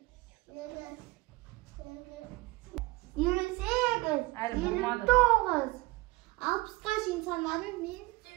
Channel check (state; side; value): quieter; left; 21.8 dB